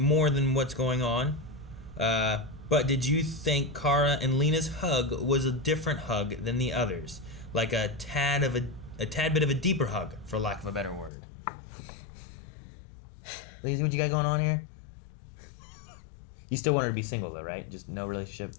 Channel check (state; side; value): drops out; right; at 11.1 s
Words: than what's going on. But did you think Kara and Lena's hug was a different hug than the others? Like a tad bit of a deeper hug, for lack of a better word. Lizzie, what you got going on here? You still want her to be single though, right? Just no relationship?